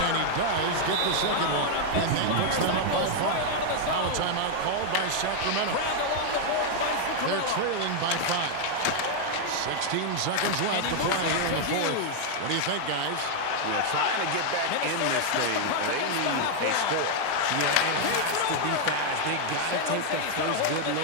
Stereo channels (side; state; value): both; different; correlation 0.00